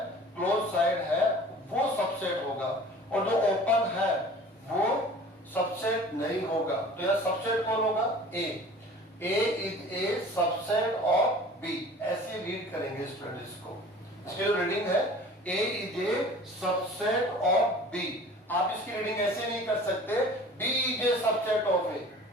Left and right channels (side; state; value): both; normal; correlation 0.44